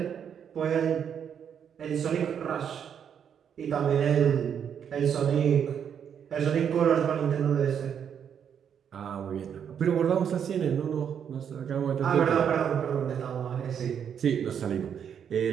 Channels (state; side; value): quieter; left; 8.1 dB